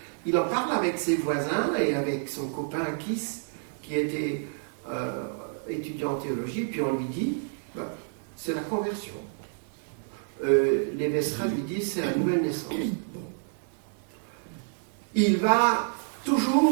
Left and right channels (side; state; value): left; silent; digital silence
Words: Il en parle avec ses voisins et avec son copain Kiss, qui était étudiant en théologie, puis on lui dit, c'est la conversion. Les Vestra lui disent, c'est la nouvelle naissance. Il va